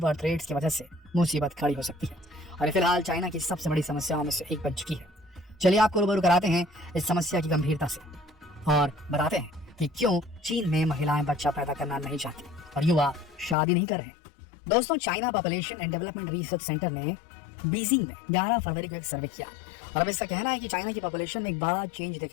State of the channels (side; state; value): right; drops out; at 13.6 s